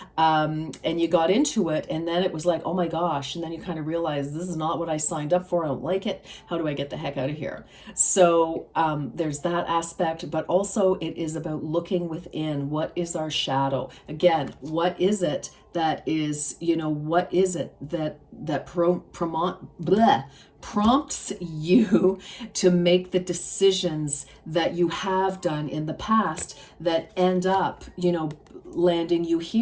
And you got into it, and then it was like, oh my gosh, and then you kind of realize this is not what I signed up for. I don't like it. How do I get the heck out of here? So there's that aspect, but also it is about looking within. What is our shadow? Again, what is it that is, you know, what is it that prompts you to make the decisions that you have done in the past that end up, you know, landing you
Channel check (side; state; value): both; identical; correlation 1.00